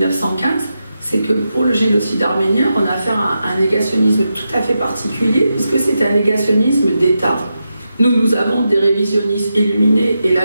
c'est que pour le génocide arménien, on a affaire à un négationnisme tout à fait particulier, puisque c'est un négationnisme d'État. Nous avons des révisionnistes illuminés et la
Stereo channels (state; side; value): inverted; both; correlation -0.88